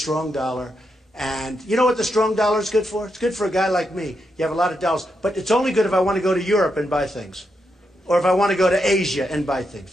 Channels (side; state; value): both; normal; correlation 0.83